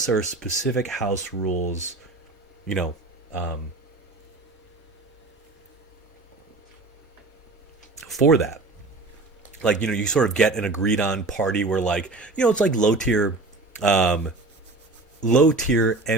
there are specific house rules, you know, for that. Like you sort of get an agreed on party where like it's like low tier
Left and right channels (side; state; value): left; quieter; 3.3 dB